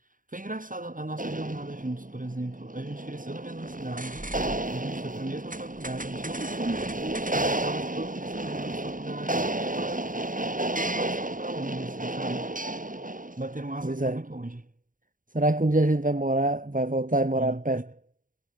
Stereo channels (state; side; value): late; left; 0.39 ms